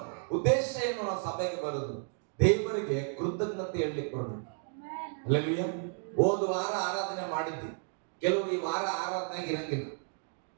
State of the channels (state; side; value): silent; left; 56 dB below the other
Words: ಉದ್ದೇಶ ಏನು? ನಾವು ಸಭೆಗೆ ಬರೋದು ದೇವರಿಗೆ ಕೃತಜ್ಞತೆ ಹೇಳಲಿಕ್ಕೆ ಬರೋದು. ಹಲ್ಲೆಲೂಯಾ. ಹೋದ ವಾರ ಆರಾಧನೆ ಮಾಡಿದ್ವಿ, ಕೆಲವರು ಈ ವಾರ ಆರಾಧನೆಗೆ ಇರಂಗಿಲ್ಲ.